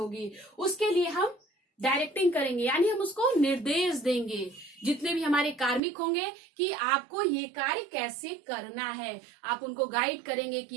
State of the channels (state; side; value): drops out; left; at 5.8 s